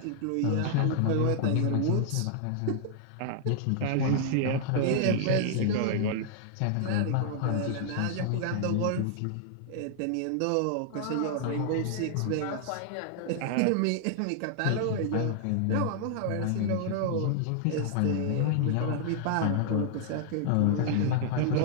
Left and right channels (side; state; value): both; different; correlation -0.01